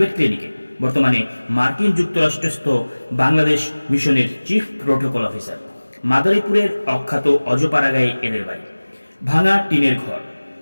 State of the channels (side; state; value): both; inverted; correlation -1.00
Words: ক্লিনিকে। বর্তমানে মার্কিন যুক্তরাষ্ট্রস্থ বাংলাদেশ মিশনের চিফ প্রোটোকল অফিসার। মাদারীপুরের অখ্যাত অজপাড়াগাঁয়ে এদের বাড়ি। ভাঙা টিনের ঘর,